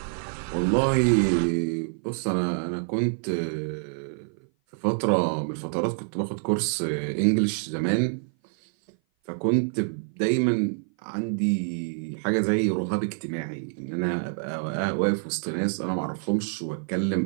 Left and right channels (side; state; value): left; silent; 57 dB below the other